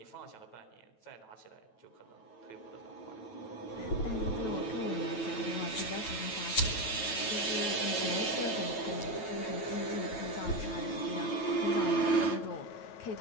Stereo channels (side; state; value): right; late; 9.1 ms